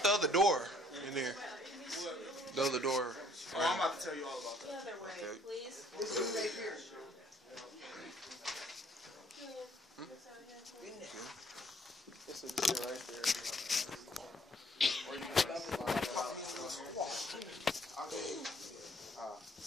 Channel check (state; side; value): normal; both; correlation 0.61